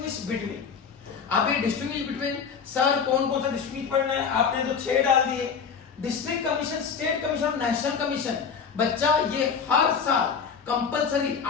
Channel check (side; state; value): right; quieter; 6.3 dB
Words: बिटवीन। अब ये डिस्टिंग्विश बिटवीन सर कौन कौन सा डिस्टिंग्विश पढ़ना है? आपने तो 6 डाल दिए, district commission, state commission, national commission. बच्चा ये हर साल कंपलसरी